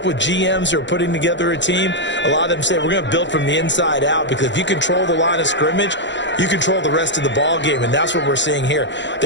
with GMs who are putting together a team, a lot of them say we're going to build from the inside out, because if you control the line of scrimmage, you control the rest of the ball game, and that's what we're seeing here.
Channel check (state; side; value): late; right; 0.52 ms